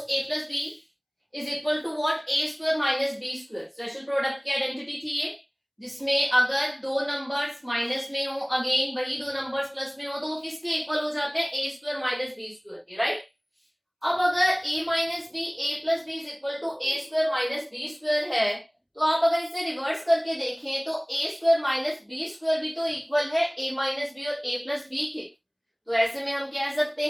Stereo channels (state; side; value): identical; both; correlation 1.00